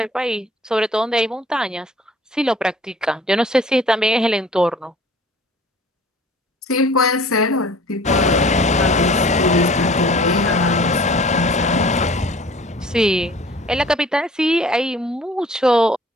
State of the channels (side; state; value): both; normal; correlation 0.50